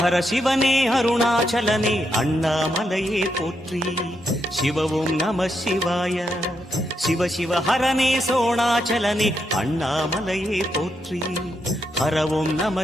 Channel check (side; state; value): both; normal; correlation 0.81